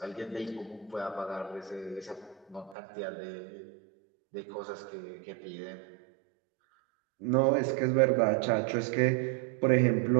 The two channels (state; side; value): drops out; left; at 2.8 s